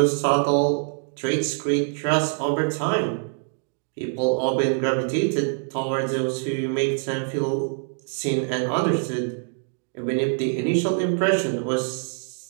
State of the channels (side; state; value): left; silent; 62 dB below the other